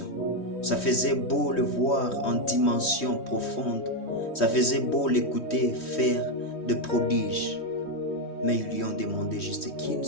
ça faisait beau le voir en dimension profonde, ça faisait beau l'écouter faire de prodiges. Mais ils lui ont demandé juste qu'une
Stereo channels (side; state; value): right; late; 3.1 ms